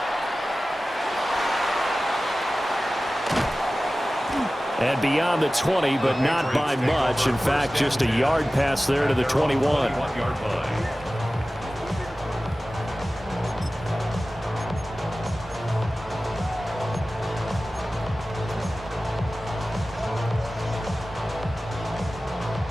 And beyond the 20, but not by much. In fact, just a yard pass there to the 21.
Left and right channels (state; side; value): normal; both; correlation 0.96